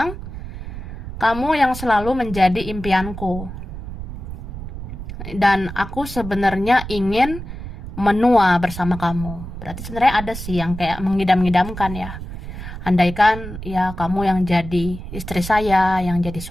kamu yang selalu menjadi impianku. Dan aku sebenarnya ingin menua bersama kamu. Berarti sebenarnya ada sih yang kayak mengidam-idamkan ya. Andaikan ya kamu yang jadi istri saya, yang jadi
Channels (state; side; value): noise; right; rumble, 9 dB below the sound